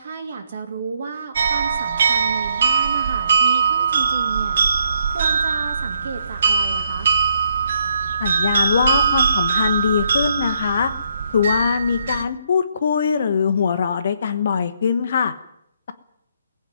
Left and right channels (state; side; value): inverted; both; correlation -0.73